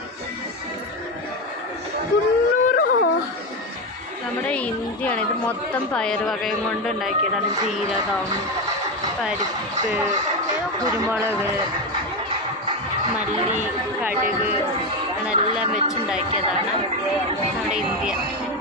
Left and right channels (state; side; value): normal; both; correlation 0.13